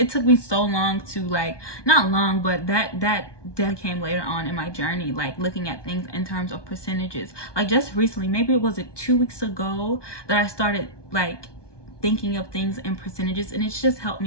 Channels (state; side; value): late; right; 1.2 ms